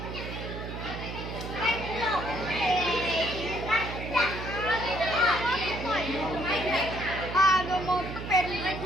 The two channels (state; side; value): noise; right; hum, 7 dB below the sound